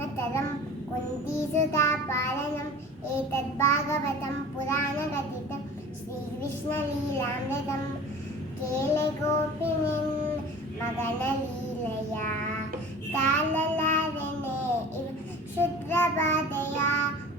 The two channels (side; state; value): both; normal; correlation 0.40